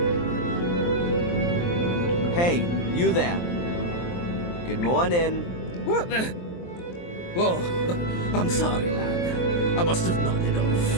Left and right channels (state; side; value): late; right; 23 ms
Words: Hey, you there. Good morning. What the? Oh, I'm sorry, lad. I must have nodded